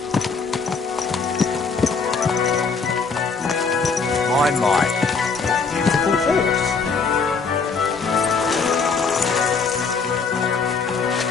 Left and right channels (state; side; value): quieter; right; 4.9 dB